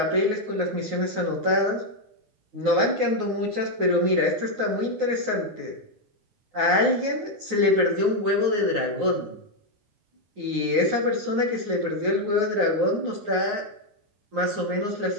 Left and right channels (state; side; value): late; left; 9.4 ms